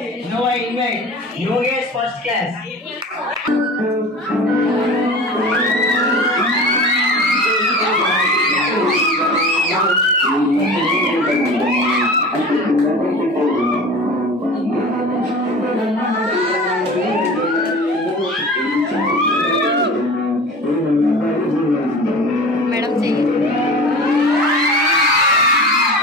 Now I invite Yogesh first class. Madam చెయ్యి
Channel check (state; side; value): normal; both; correlation 0.36